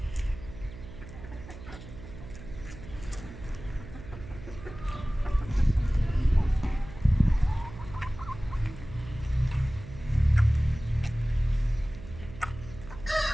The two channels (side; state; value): right; noise; hum, 14 dB below the sound